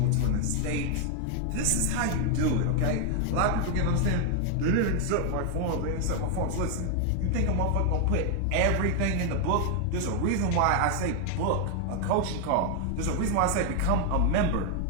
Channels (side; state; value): both; different; correlation 0.00